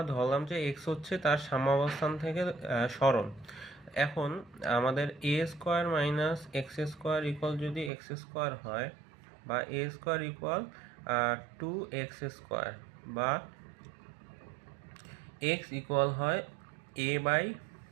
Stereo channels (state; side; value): drops out; left; at 7.9 s